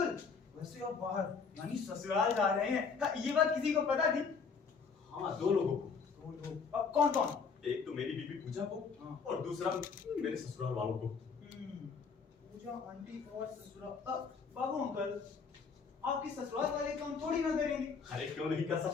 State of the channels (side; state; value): right; quieter; 5.4 dB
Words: वैसे आप बाहर यानी ससुराल जा रहे हैं, ये बात किसी को पता थी? हाँ, 2 लोगों को। 2 लोग? अब कौन कौन? एक तो मेरी बीवी पूजा को, हाँ। और दूसरा मेरे ससुराल वालों को। पूजा आंटी और ससुराल। बाबू अंकल, आपके ससुराल वाले काम थोड़ी ना करेंगे। अरे क्यों नहीं कर